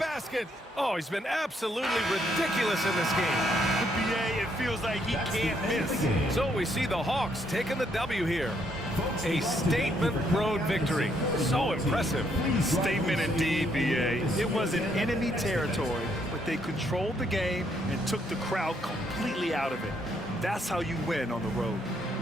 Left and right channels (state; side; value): normal; both; correlation 0.72